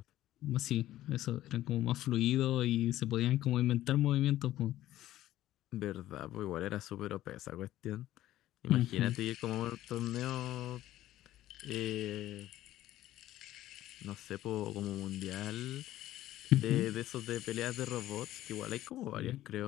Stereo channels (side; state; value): right; quieter; 14.2 dB